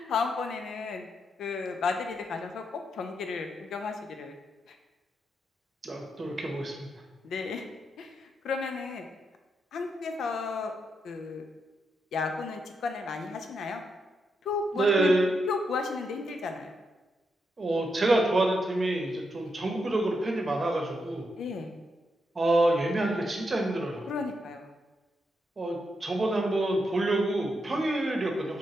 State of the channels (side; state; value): both; normal; correlation 0.83